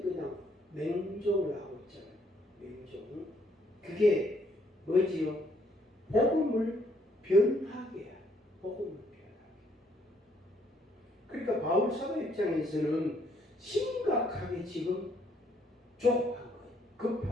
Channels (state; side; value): normal; both; correlation 0.68